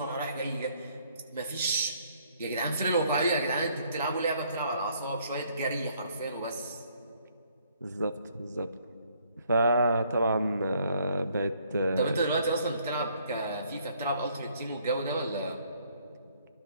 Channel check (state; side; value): inverted; both; correlation -0.65